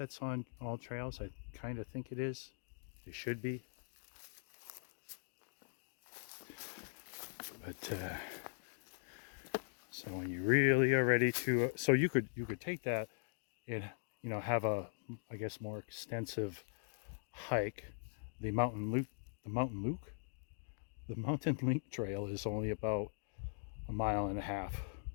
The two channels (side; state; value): right; silent; digital silence